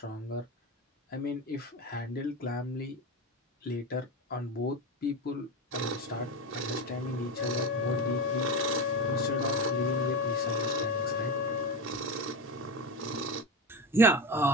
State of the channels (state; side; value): normal; both; correlation 0.20